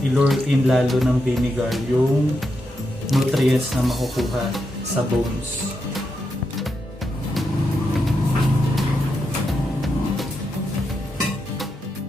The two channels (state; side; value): normal; both; correlation 0.84